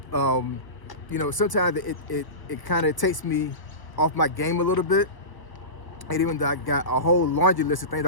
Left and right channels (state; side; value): late; right; 1.0 ms